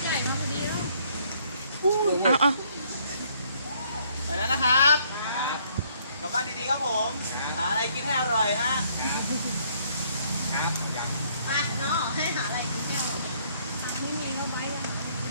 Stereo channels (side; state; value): both; inverted; correlation -0.65